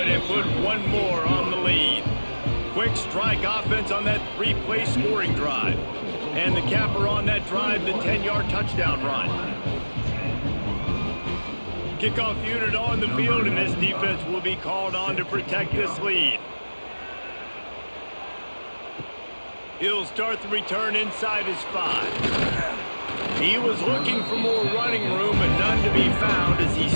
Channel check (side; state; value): both; inverted; correlation -1.00